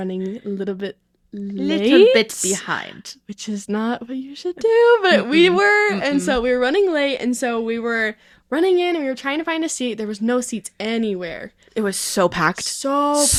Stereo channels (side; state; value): both; identical; correlation 1.00